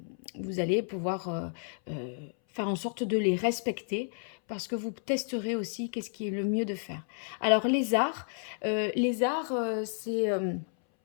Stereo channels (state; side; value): silent; right; 57 dB below the other